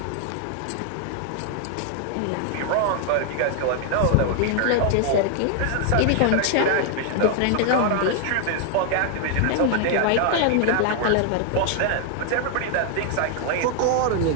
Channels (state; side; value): different; both; correlation 0.00